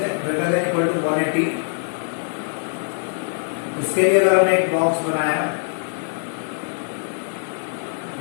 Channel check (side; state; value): right; silent; digital silence